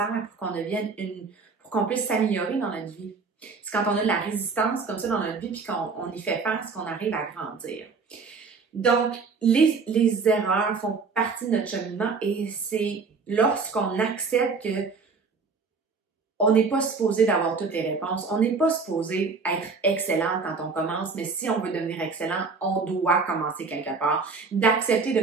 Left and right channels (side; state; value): left; quieter; 4.7 dB